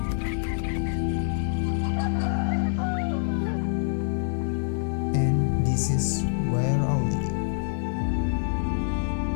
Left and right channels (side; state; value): right; silent; digital silence